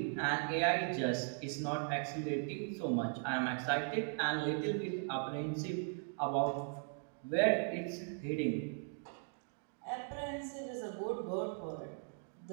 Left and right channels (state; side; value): silent; left; 52 dB below the other